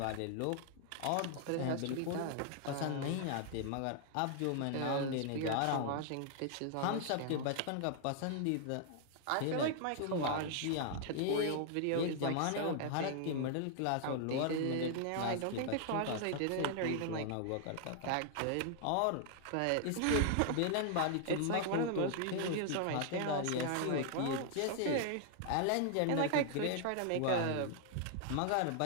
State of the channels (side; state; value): both; different; correlation 0.00